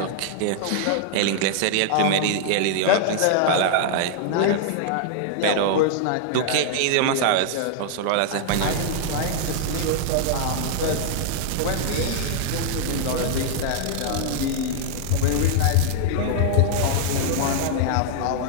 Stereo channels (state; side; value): different; both; correlation -0.01